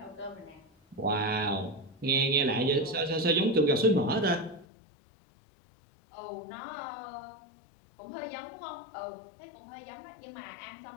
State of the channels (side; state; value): right; drops out; at 4.7 s